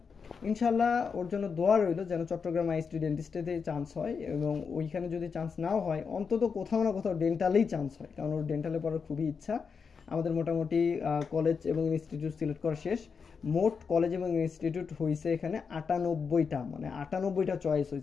ইনশাল্লাহ ওর জন্য দোয়া রইল যেন চট্টগ্রাম আইএসটি ডেন্টিস্টেতে চান্স হয়, এবং ওইখানে যদি চান্স নাও হয় অন্তত কোথাও না কোথাও ডেন্টালেই চান্স হয়, কারণ ওর ডেন্টালে পড়ার খুবই ইচ্ছা। আমাদের মোটামুটি কলেজ এবং ইনস্টিটিউট সিলেক্ট করা শেষ। মোট কলেজ এবং ইনস্টিটিউট হয়েছে এখানে 98টা, মানে 98টা চয়েস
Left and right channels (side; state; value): right; quieter; 5.7 dB